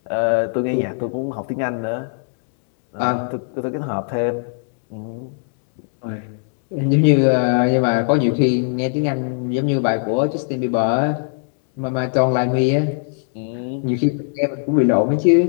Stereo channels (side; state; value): right; silent; 66 dB below the other